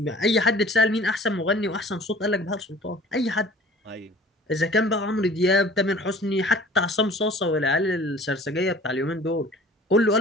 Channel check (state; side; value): normal; both; correlation 0.47